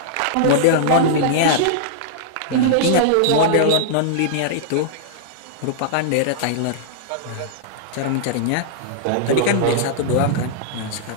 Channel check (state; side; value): different; both; correlation -0.02